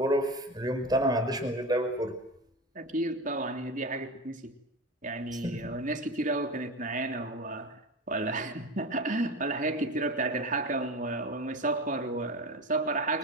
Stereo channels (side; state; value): both; normal; correlation 0.25